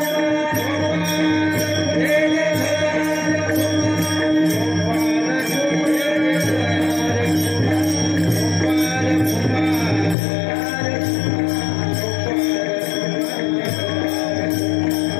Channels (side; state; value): right; drops out; at 10.2 s